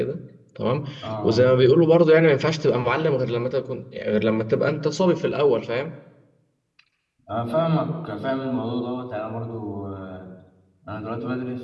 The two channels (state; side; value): identical; both; correlation 1.00